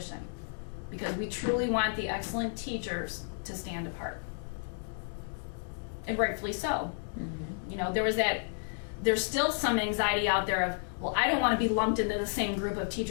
Because we truly want the excellent teachers to stand apart. And rightfully so. Mm-hmm. There's still some anxiety out there of, well, I don't want to be lumped into the same group of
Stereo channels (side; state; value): right; silent; digital silence